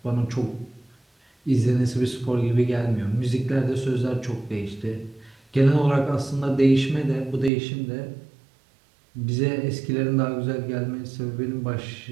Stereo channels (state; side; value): drops out; left; at 7.5 s